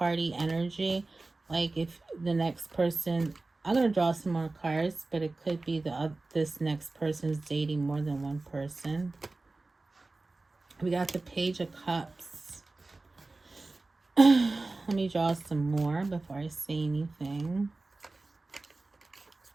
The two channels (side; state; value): left; quieter; 3.3 dB